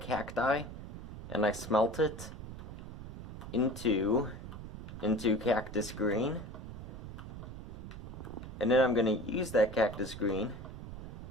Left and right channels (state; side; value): noise; right; rumble, 10 dB below the sound